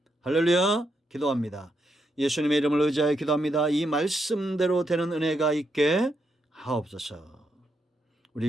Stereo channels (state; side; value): normal; both; correlation 0.80